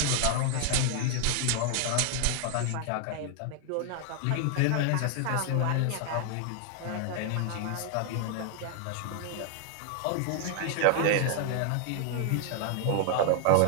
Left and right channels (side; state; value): both; different; correlation 0.00